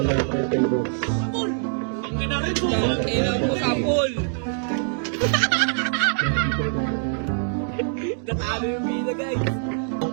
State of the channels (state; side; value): silent; left; digital silence